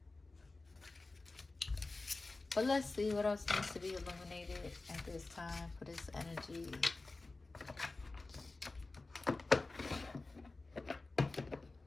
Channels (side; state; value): right; quieter; 3.4 dB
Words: But let's see what else needs to be illuminated at this time for this energy.